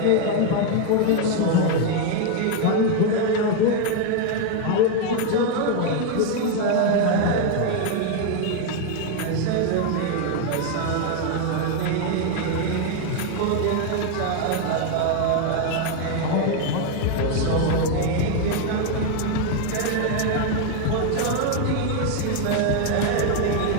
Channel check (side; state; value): both; different; correlation 0.01